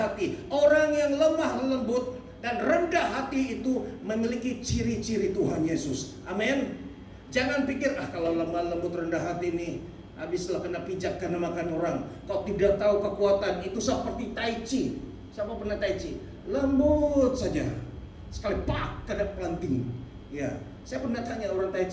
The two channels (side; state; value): both; identical; correlation 1.00